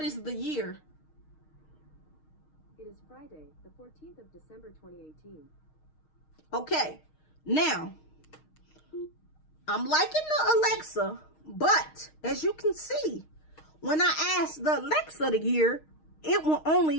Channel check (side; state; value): right; late; 6.4 ms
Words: is the year? It is Friday, the 14th of December, 2018. Okay, now, I'm liking the Alexa, but as you can see, when I ask the Alexa the year, it will only